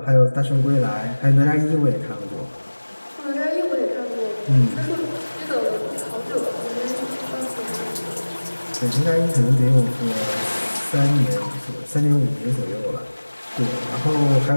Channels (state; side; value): inverted; both; correlation -1.00